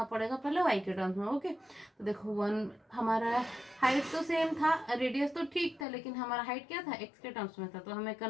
पड़ेगा पहले y के टर्म्स में। ओके, तो देखो 1 हमारा हाइट तो सेम था, रेडियस तो ठीक था, लेकिन हमारा हाइट क्या था x के टर्म्स में था, तो हमें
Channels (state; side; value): drops out; right; at 5.9 s